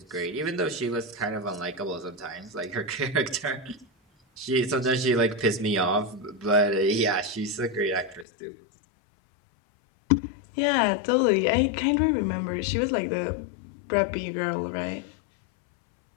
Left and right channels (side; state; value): right; drops out; at 8.2 s